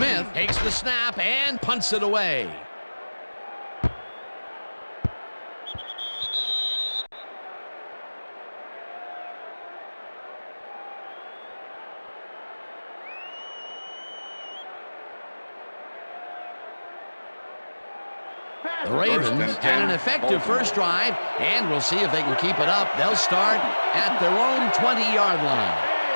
takes the snap and punts it away. The Ravens had an effective first drive, and we'll see if they can keep it up. They'll start at their own 20-yard line.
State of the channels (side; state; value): both; inverted; correlation -1.00